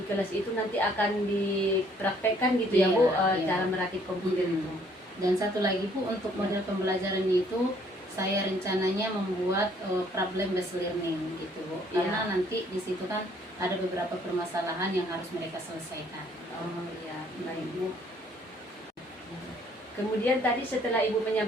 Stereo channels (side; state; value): both; normal; correlation 0.62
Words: kelas itu nanti akan dipraktekkan gitu ya Bu, cara merakit komputer itu. Dan satu lagi Bu, untuk model pembelajaran itu saya rencananya membuat problem based learning gitu Bu, karena nanti di situ kan ada beberapa permasalahan yang harus mereka selesaikan. Oh iya, baik Bu. Kemudian tadi setelah Ibu